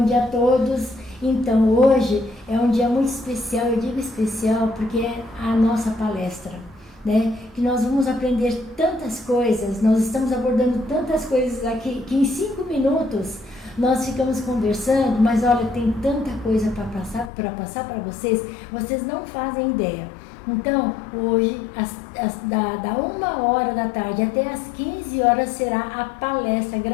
dia a todos. Então, hoje é um dia muito especial, eu digo especial porque é a nossa palestra, né? Que nós vamos aprender tantas coisas, nós estamos abordando tantas coisas aqui, que em 5 minutos nós ficamos conversando, mas olha, tem tanta coisa para passar para vocês, vocês não fazem ideia. Então, hoje, da 1h da tarde até as 15 horas será a palestra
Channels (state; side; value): drops out; right; at 17.3 s